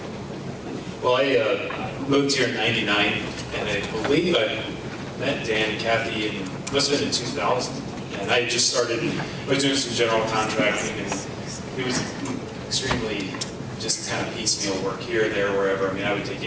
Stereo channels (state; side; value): identical; both; correlation 1.00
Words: Well, I moved here in '99, and I believe I met Dan and Kathy must have been in 2000. And I just started, I was doing some general contracting, and it was extremely just kind of piecemeal work here, there, wherever. I mean, I would take